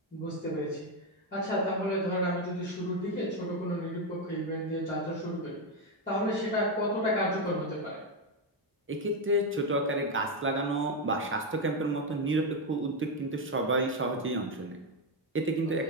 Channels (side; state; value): both; normal; correlation 0.06